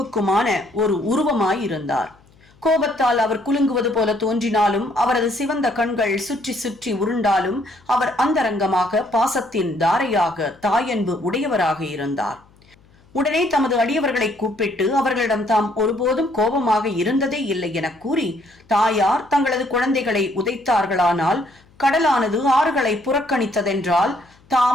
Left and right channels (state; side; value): noise; left; hum, 30 dB below the sound